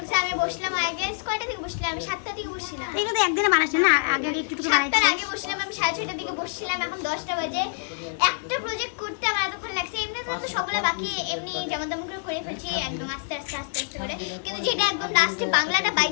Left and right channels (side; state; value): right; silent; 61 dB below the other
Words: আমি বসলাম আগে কয়টা থেকে বসলাম? আমি 7টা থেকে বসছিলাম। এইটা তো একদিনে বানাইছ না, আগে আগে একটু বানাইছিস। আগে বসলাম আমি 6:30টার দিকে বসছিলাম, এখন 10টা বাজে। একটা প্রজেক্ট করতে আমার এতক্ষণ লাগছে। এমনি তো সবগুলো বাকি এমনি যেমন তেমন করে ফেলছি একদম আস্তে করে। কিন্তু যেটা একদম লাস্টে বাংলাটা